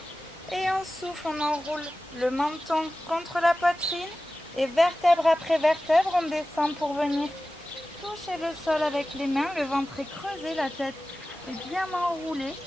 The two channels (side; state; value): both; normal; correlation 0.95